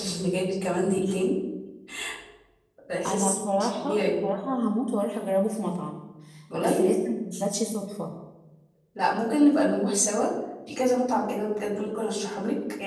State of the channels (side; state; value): both; identical; correlation 1.00